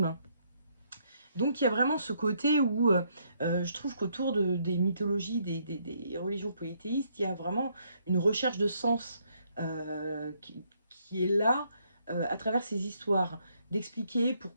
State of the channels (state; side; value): inverted; both; correlation -0.72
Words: Donc il y a vraiment ce côté où je trouve qu'autour des mythologies, des religions polythéistes, il y a vraiment une recherche de sens qui est là à travers ces histoires, d'expliquer